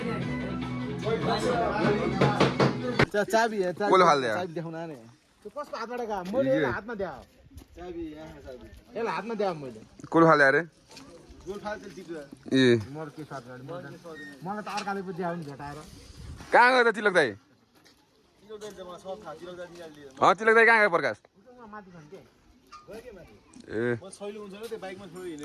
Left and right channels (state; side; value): identical; both; correlation 1.00